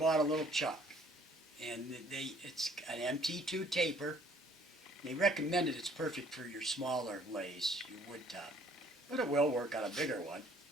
a little chuck, and it's an MT2 taper. They recommended it's perfect for your smaller lays, your wood top, but it will work on a bigger one.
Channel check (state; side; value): normal; both; correlation 0.59